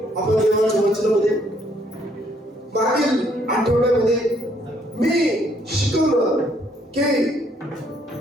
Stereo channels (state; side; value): normal; both; correlation 0.67